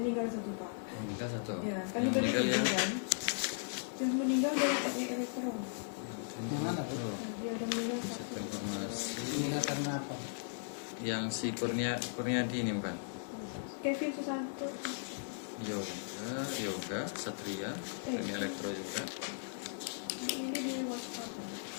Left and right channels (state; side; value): silent; right; digital silence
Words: satu Pak. Meninggal satu. Ya, kan Yang itu meninggal ya? kan. Yang meninggal dari teknik elektro. Yang mana, Bu? Oh, Dia ada meninggal satu satu. informasi. Meninggal karena apa? Yang si Kurniadi ini bukan? Kevin Susanto. Yoga, Satria, teknik elektro juga. Ini di WhatsApp.